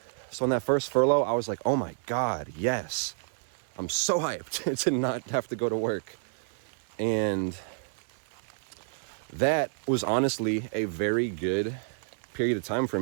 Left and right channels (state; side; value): silent; left; 56 dB below the other